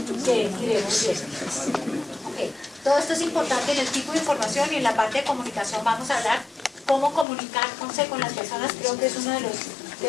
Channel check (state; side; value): drops out; right; at 7.2 s